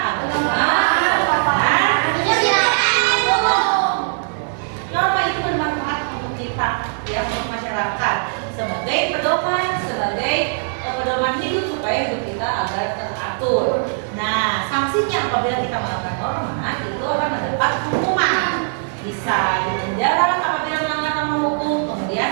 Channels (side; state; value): left; silent; digital silence